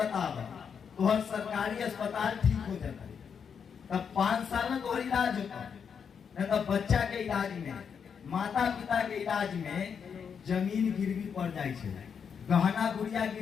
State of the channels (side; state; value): right; quieter; 6.9 dB